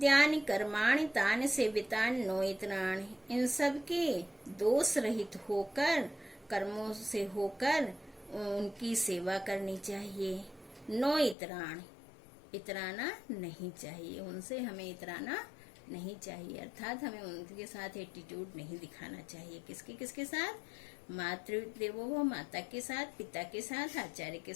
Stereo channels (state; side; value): drops out; right; at 11.4 s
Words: कर्माणि तानि सेवितानि नोइत्राणि, इन सब के दोष रहित होकर, कर्मों से होकर उनकी सेवा करनी चाहिए। नो इतराण, इतराना नहीं चाहिए, उनसे हमें इतराना नहीं चाहिए, अर्थात हमें उनके साथ एटीट्यूड नहीं दिखाना चाहिए। किसके साथ? मातृदेवो भव, माता के साथ, पिता के साथ, आचार्य के